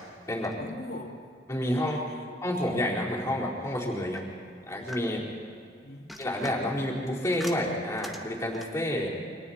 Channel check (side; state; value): both; normal; correlation 0.62